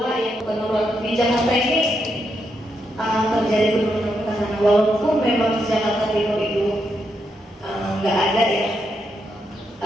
yang menurut di Jakarta ini terjadi penurunan tanah. Walaupun memang di Jakarta Timur itu nggak ada ya,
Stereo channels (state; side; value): normal; both; correlation 0.81